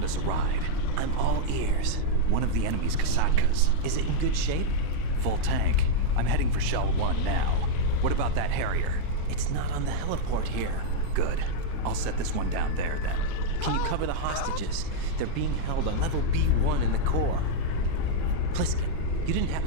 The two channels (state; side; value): different; both; correlation -0.02